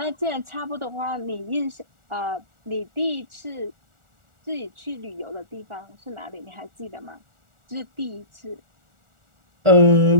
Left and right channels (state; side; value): late; left; 1.4 ms